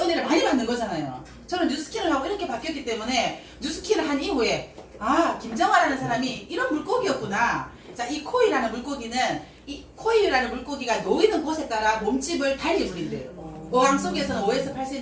많이 받는 거잖아요. 저는 뉴스킨을 하고 이렇게 바뀌었기 때문에 뉴스킨을 한 이후에 아, 김정아라는 사람이 이런 물고기였구나. 자, 이 코이라는 물고기는 이 코이라는 물고기가 놓이는 곳에 따라 몸집을 달리 부린대요. 어항 속에서는 5에서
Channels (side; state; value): both; identical; correlation 1.00